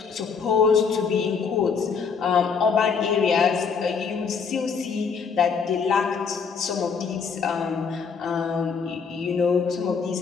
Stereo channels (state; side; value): quieter; right; 5.8 dB